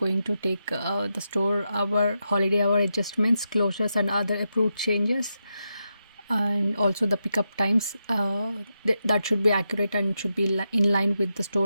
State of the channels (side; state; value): both; inverted; correlation -0.86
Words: to take the store hour, holiday hour adjustments, closures, and other approved changes, and also the pickup times. That should be accurate and should be in line with the